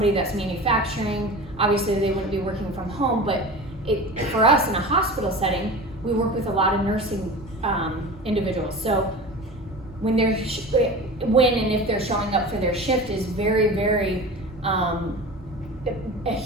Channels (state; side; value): normal; both; correlation 0.33